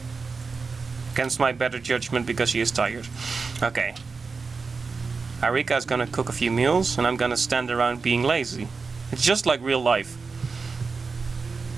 Against my better judgment, because she is tired. Okay. Arica is gonna cook a few meals, and I'm gonna stand around being lazy. It's just like real life.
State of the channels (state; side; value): quieter; left; 4.6 dB